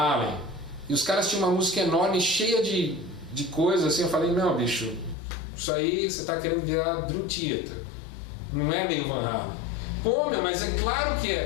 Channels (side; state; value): right; drops out; at 5.2 s